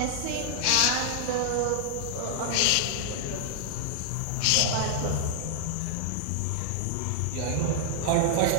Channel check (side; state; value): both; different; correlation -0.01